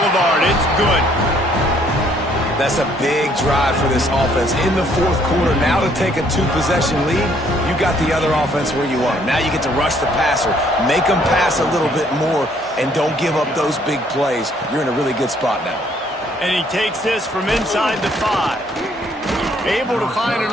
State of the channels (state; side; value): normal; both; correlation 0.64